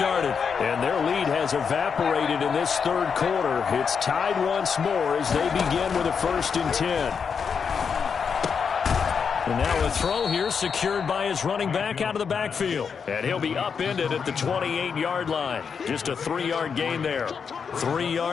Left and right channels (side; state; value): right; quieter; 6.3 dB